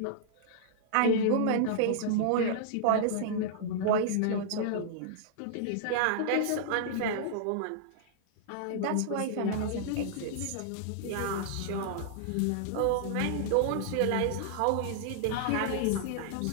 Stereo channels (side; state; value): both; different; correlation -0.01